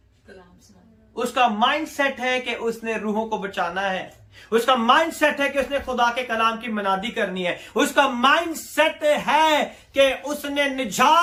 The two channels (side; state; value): both; identical; correlation 1.00